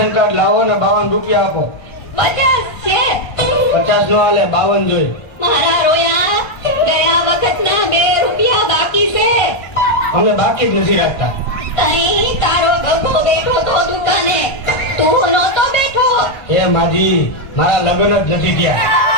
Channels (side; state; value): right; late; 1.6 ms